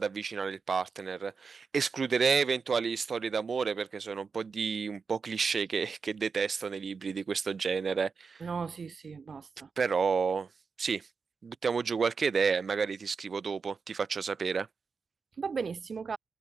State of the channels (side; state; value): left; quieter; 5.2 dB